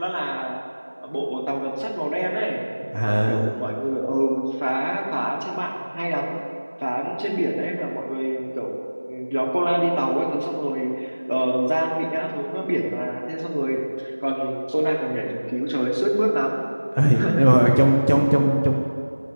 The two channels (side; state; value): both; inverted; correlation -1.00